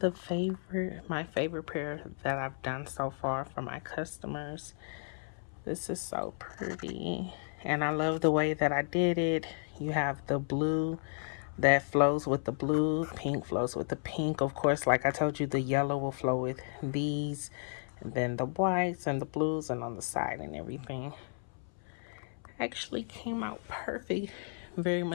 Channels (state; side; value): silent; right; 56 dB below the other